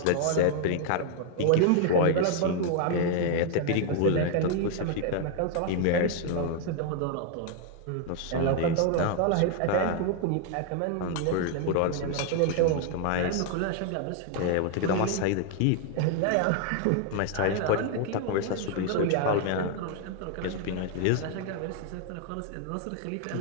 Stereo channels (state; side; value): different; both; correlation 0.00